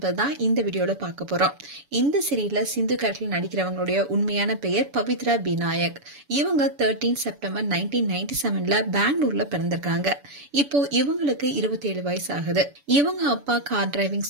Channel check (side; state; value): left; late; 7.0 ms